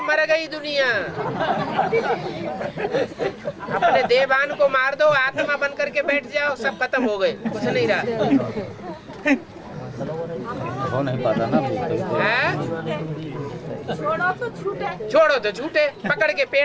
मर गई दुनिया। अपने देवान को मार दो, आत्मा बन करके बैठ जाओ, सब खत्म हो गए, कुछ नहीं रहा। हो नहीं पाता ना। छोड़ो तो छूटे, पकड़ के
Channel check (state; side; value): identical; both; correlation 1.00